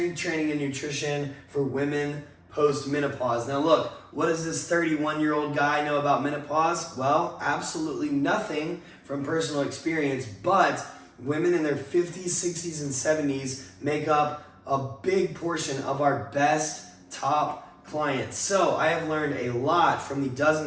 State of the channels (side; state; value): both; identical; correlation 1.00